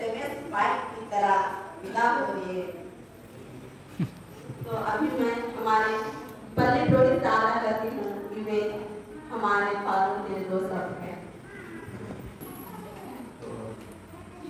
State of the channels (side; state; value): both; identical; correlation 1.00